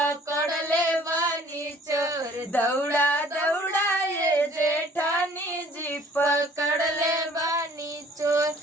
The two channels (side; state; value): both; normal; correlation 0.55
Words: ले बानी चोर, दौड़ा दौड़ाए जेठानी जी पकड़ ले बानी चोर।